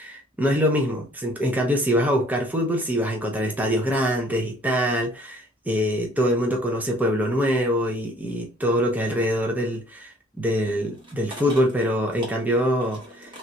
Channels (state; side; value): normal; both; correlation 0.57